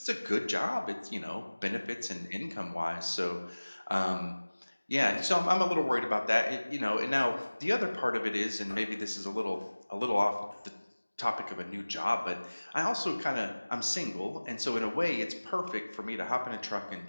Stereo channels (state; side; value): inverted; both; correlation -1.00